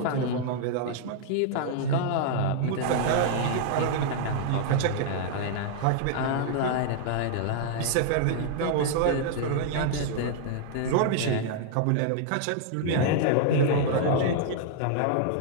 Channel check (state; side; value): different; both; correlation -0.01